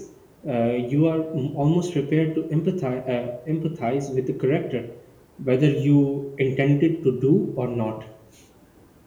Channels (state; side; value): identical; both; correlation 1.00